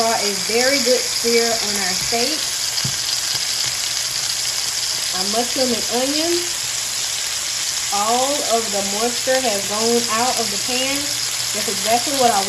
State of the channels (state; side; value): identical; both; correlation 1.00